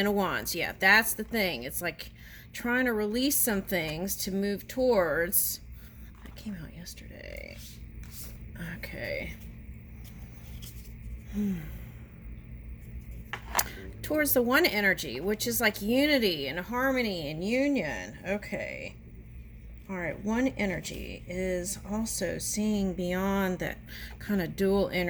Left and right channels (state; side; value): identical; both; correlation 1.00